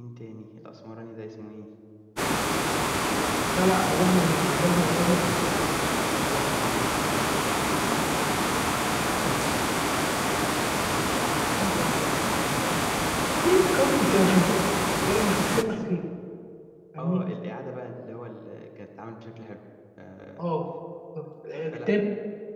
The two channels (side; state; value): both; identical; correlation 1.00